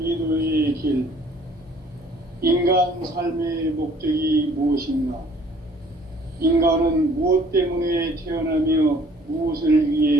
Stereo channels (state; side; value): normal; both; correlation 0.56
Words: 길. 인간 삶의 목적이 무엇인가? 인간은 무엇 때문에 태어나며 무엇을